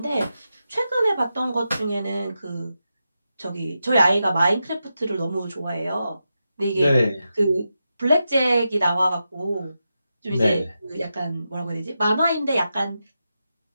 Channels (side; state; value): both; inverted; correlation -0.88